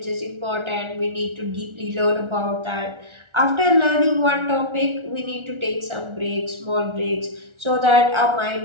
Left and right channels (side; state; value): left; late; 1.4 ms